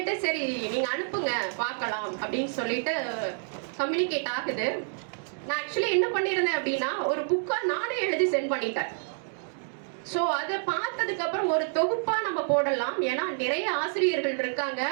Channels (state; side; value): silent; left; digital silence